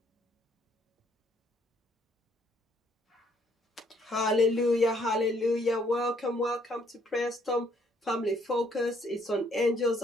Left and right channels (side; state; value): both; normal; correlation 0.67